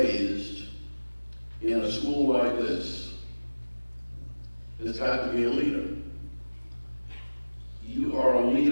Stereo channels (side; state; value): both; inverted; correlation -1.00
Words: in a school like this has got to be a leader. You are a